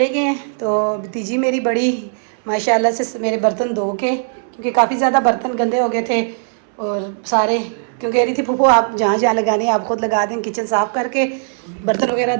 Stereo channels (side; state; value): left; silent; 67 dB below the other